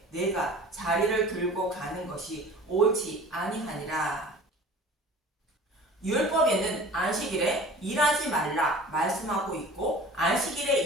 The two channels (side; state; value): both; normal; correlation 0.42